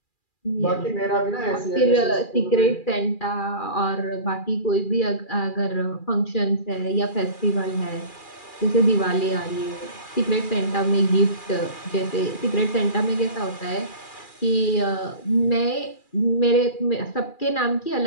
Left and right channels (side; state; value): right; late; 2.4 ms